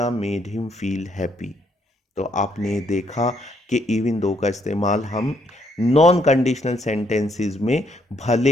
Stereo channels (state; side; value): normal; both; correlation 0.71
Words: made him feel happy. तो आपने देखा कि इवन दो का इस्तेमाल हम नॉन कंडीशनल सेंटेंसेस में भले